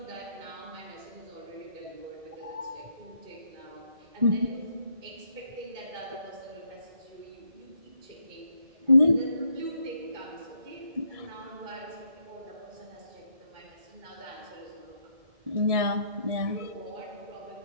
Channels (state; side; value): late; left; 1.7 ms